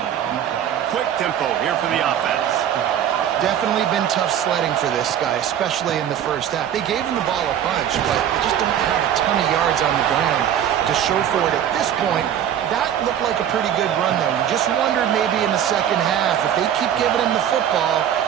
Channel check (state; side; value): quieter; left; 9.9 dB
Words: Quick tempo here for the offense. Definitely been tough sledding for this guy, especially in the first half. They gave him the ball a bunch, but they just don't have a ton of yards on the ground to show for it at this point. That looked like a pretty good run, though. You just wondered maybe in the second half, if they keep giving him the football,